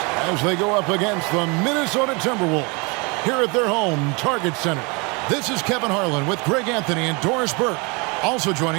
as they go up against the Minnesota Timberwolves here at their home Target Center. This is Kevin Harlan with Greg Anthony and Doris Burke. Also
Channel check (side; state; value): left; quieter; 29.8 dB